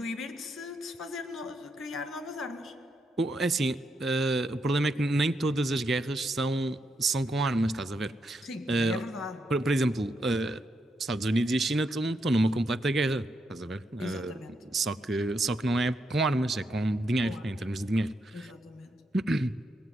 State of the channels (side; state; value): both; normal; correlation 0.81